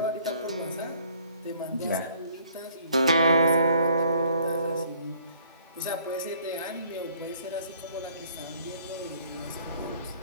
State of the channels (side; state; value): both; inverted; correlation -0.60